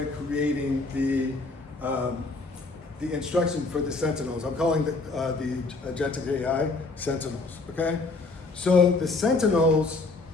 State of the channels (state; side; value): quieter; right; 3.5 dB